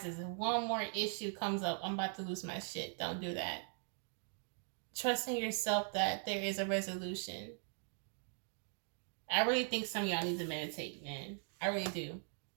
and one more issue comes up, I'm about to lose my shit. Don't do that. Trust in yourself that there is a resolution. I really think some of y'all need to meditate, man. I really do.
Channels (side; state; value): left; silent; 51 dB below the other